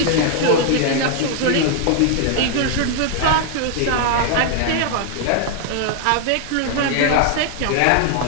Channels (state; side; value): different; both; correlation 0.00